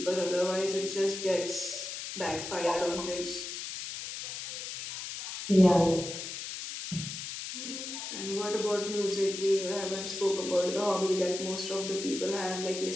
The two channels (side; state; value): left; noise; hiss, 7 dB below the sound